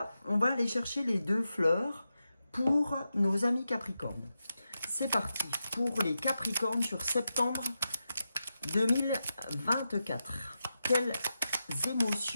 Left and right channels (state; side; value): inverted; both; correlation -0.89